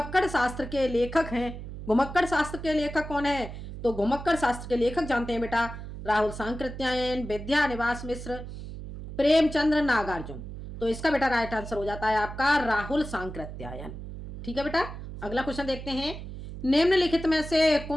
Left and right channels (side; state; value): right; noise; hum, 10 dB below the sound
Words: शास्त्र के लेखक हैं। घुमक्कड़ शास्त्र के लेखक कौन है? तो घुमक्कड़ शास्त्र के लेखक जानते हैं बेटा, राहुल सांकृत्यायन, विद्यानिवास मिश्र, प्रेमचंद्र, नागार्जुन। तो इसका बेटा राइट आंसर हो जाता है आपका राहुल सांकृत्यायन। ठीक है बेटा, अगला क्वेश्चन देखते हैं। निम्नलिखित में से